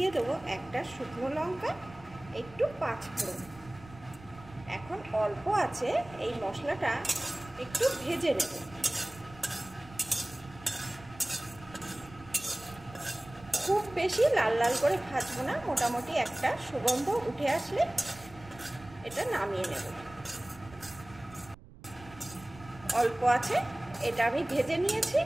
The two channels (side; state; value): right; noise; rumble, 20 dB below the sound